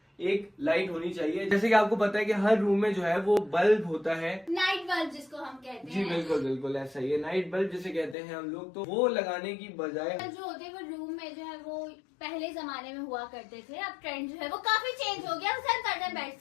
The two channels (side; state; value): right; drops out; at 8.2 s